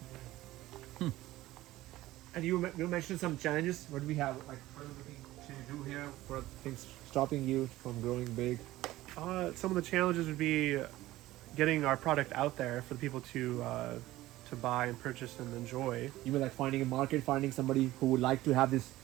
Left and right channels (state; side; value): quieter; left; 16.5 dB